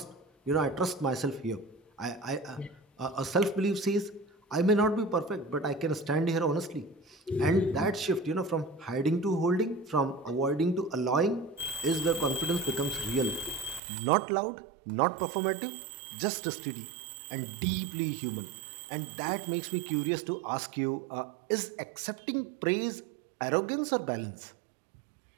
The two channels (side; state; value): left; drops out; at 13.8 s